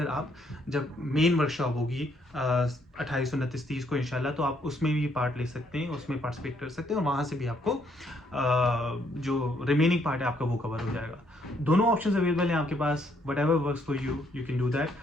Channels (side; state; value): both; normal; correlation 0.70